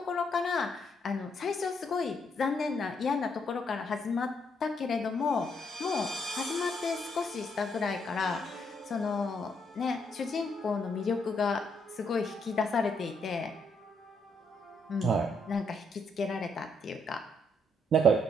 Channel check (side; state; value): both; normal; correlation 0.74